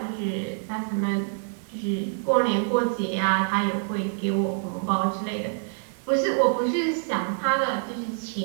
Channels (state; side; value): silent; left; digital silence